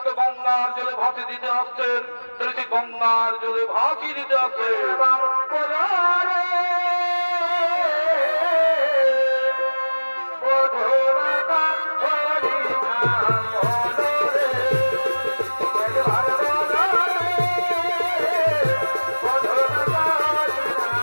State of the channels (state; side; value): inverted; both; correlation -1.00